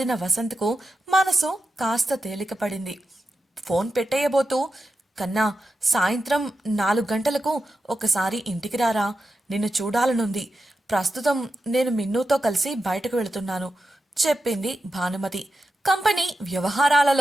వసంత్కు మనసు కాస్త తేలికపడింది. ఫోన్ పెట్టేయబోతూ, కన్నా, సాయంత్రం 4 గంటలకు ఒకసారి ఇంటికి రారా, నిన్ను చూడాలనుంది. ప్రస్తుతం నేను మిన్నుతో కలిసి బయటకు వెళుతున్నాను చెప్పింది భానుమతి. కంపెనీ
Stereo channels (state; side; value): normal; both; correlation 0.90